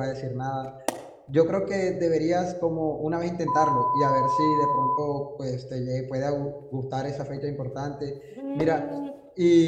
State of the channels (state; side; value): identical; both; correlation 1.00